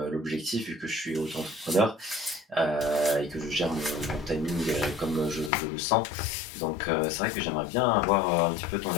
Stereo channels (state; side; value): drops out; right; at 5.5 s